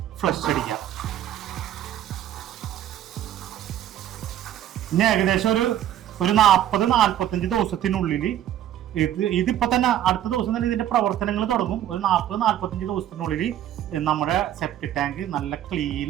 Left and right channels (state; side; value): quieter; left; 11.6 dB